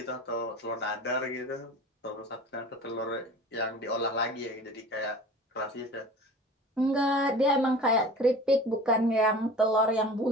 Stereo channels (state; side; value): normal; both; correlation 0.40